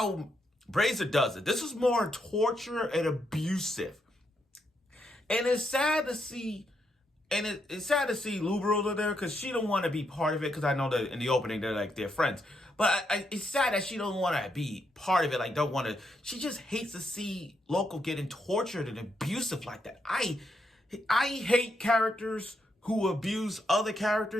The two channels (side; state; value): both; normal; correlation 0.79